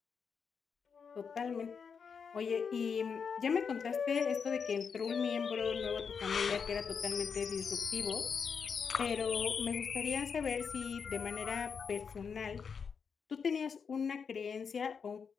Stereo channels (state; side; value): quieter; right; 6.2 dB